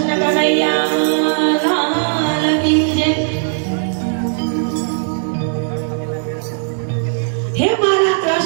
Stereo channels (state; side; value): silent; left; digital silence